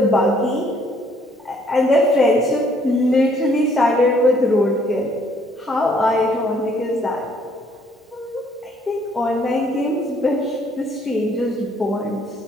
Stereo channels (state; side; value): normal; both; correlation 0.64